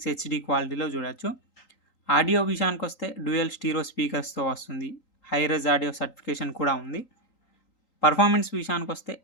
హెచ్డి క్వాలిటీలో చూడొచ్చు. ఆడియో విషయానికి వస్తే డ్యూయల్ స్టీరో స్పీకర్స్తో వస్తుంది. హైరెజ్ ఆడియో సర్టిఫికేషన్ కూడా ఉంది. పర్ఫార్మెన్స్ విషయానికి వస్తే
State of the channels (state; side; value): late; right; 3.8 ms